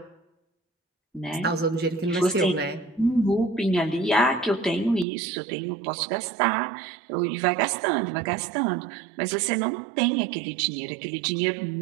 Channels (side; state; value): left; drops out; at 5.1 s